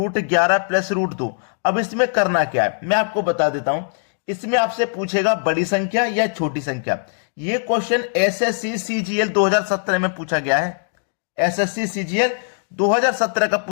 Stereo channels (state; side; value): silent; right; digital silence